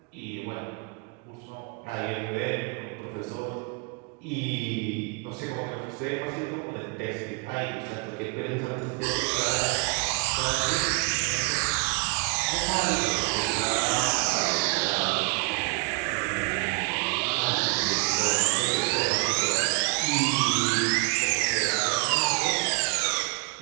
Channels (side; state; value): left; quieter; 31.9 dB